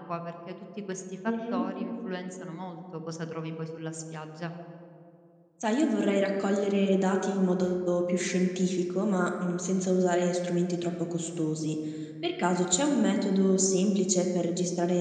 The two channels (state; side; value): identical; both; correlation 1.00